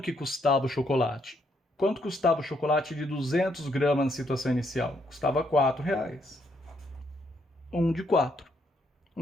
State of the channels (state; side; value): normal; both; correlation 0.74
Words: custava o chocolate. Quanto custava o chocolate de 200 gramas na situação inicial? Custava R$4. 1 de 4.